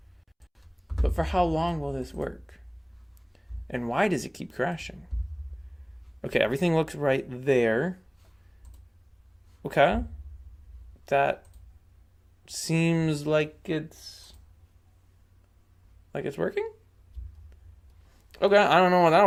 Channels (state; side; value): identical; both; correlation 1.00